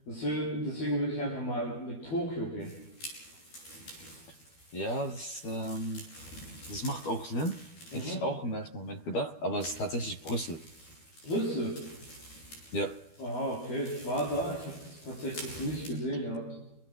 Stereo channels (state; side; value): late; right; 12 ms